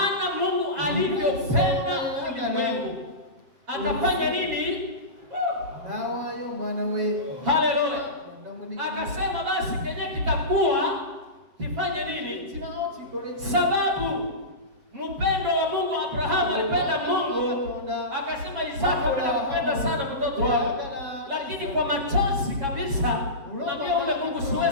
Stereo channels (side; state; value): left; late; 7.7 ms